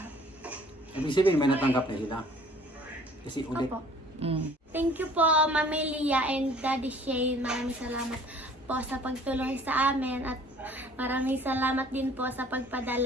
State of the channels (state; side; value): normal; both; correlation 0.53